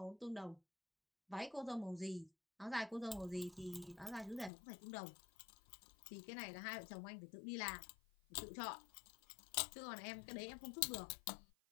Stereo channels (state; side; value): drops out; right; at 4.5 s